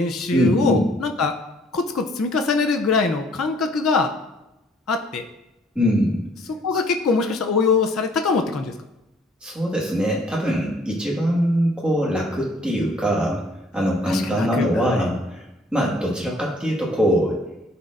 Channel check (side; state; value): both; normal; correlation 0.60